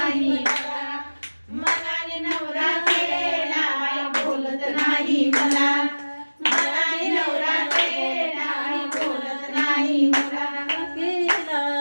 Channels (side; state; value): both; inverted; correlation -1.00